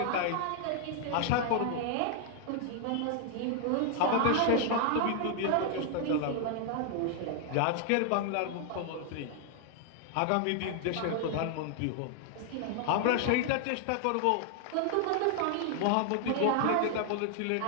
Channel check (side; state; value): both; different; correlation 0.00